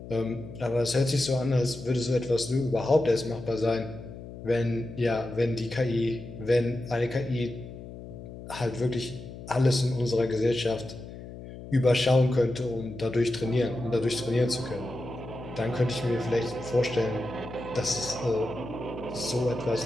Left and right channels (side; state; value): left; noise; hum, 13 dB below the sound